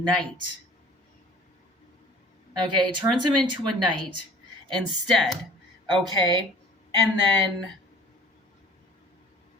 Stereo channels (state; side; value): normal; both; correlation 0.47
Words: Okay, turns him into a knight instead. Okay, and then